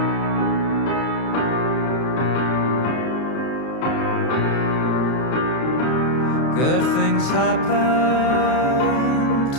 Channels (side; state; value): right; late; 32 ms